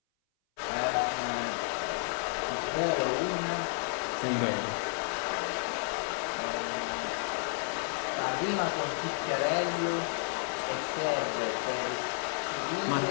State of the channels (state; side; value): silent; right; 57 dB below the other